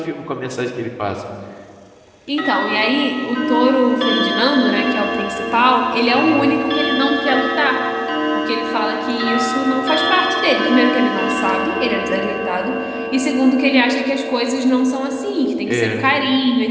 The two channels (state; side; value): identical; both; correlation 1.00